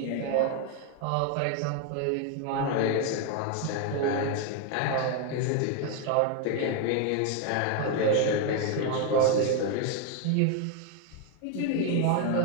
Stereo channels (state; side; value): different; both; correlation 0.01